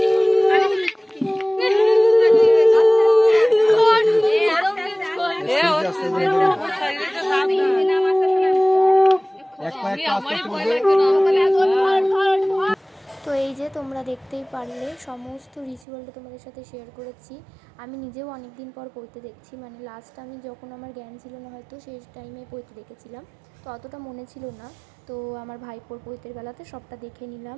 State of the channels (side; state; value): left; drops out; at 15.9 s